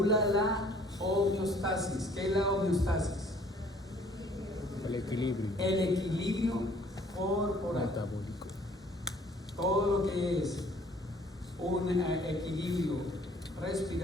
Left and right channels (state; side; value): normal; both; correlation 0.57